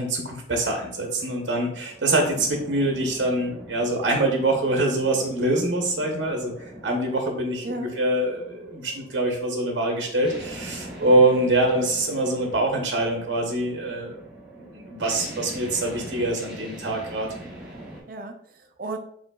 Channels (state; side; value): normal; both; correlation -0.04